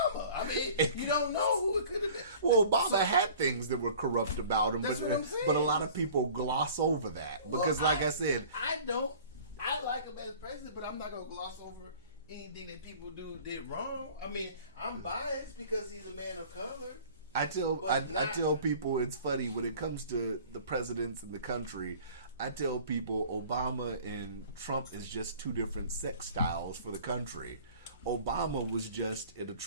I mean, you don't know who it could have been. Well, Obama had things that were corrupt about him, That's what I'm saying. but a lot of people gloss over that because, like I said, I like him as president, but I'm not gonna gloss over anything that people did wrong. I mean, I'm biased because he's a man of color. I tell people it's funny when it comes to the presidents in the country. I tell people Obama and Trump is just two different sex styles for the country. Obama was just an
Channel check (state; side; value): inverted; both; correlation -0.47